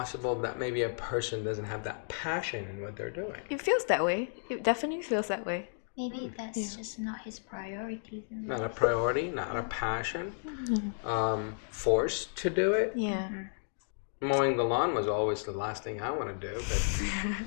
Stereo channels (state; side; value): silent; right; digital silence